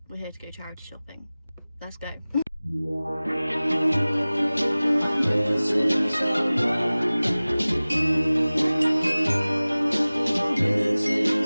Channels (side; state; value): both; inverted; correlation -0.99